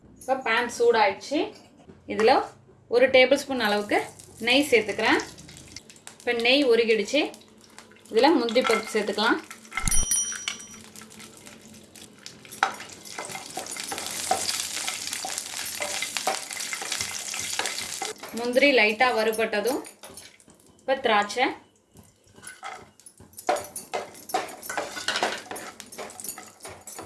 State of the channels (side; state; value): both; identical; correlation 1.00